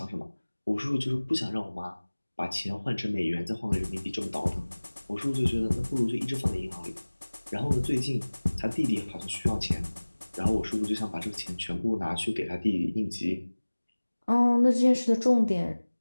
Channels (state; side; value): inverted; both; correlation -1.00